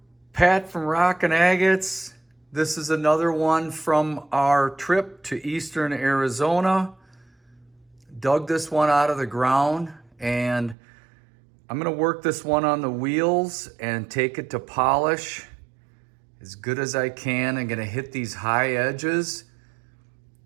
Pat from Rockin' Agates. This is another one from our trip to eastern Arizona. Dug this one out of the ground and I'm gonna work this one on the wheels and take it to polish as good as I can. I'm gonna hit these high edges,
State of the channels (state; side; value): drops out; left; at 10.8 s